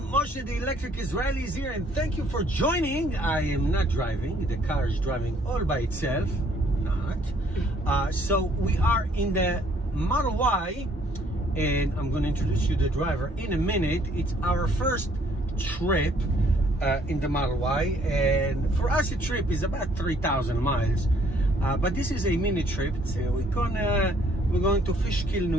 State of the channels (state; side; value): normal; both; correlation 0.63